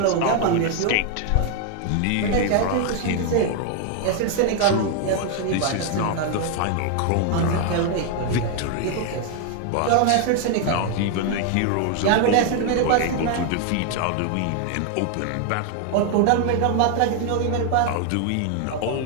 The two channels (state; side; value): different; both; correlation 0.00